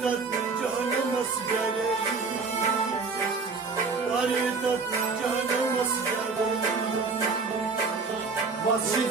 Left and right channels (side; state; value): left; quieter; 4.5 dB